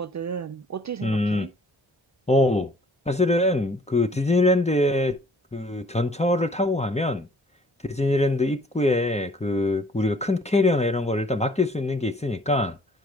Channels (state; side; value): normal; both; correlation 0.57